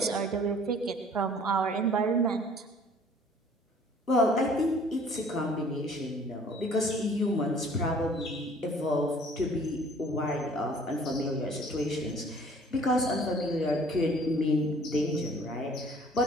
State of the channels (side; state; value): both; normal; correlation 0.53